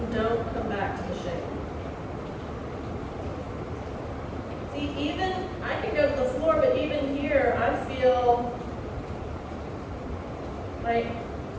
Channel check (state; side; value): identical; both; correlation 1.00